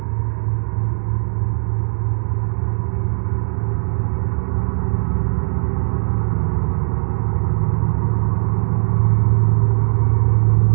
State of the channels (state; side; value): silent; left; digital silence